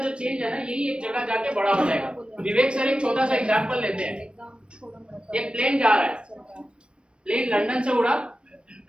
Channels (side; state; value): left; late; 0.057 ms